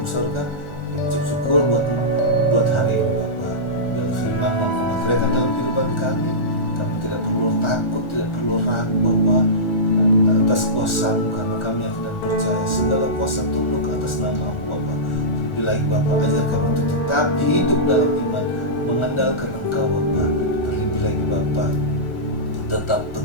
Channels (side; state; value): right; late; 1.4 ms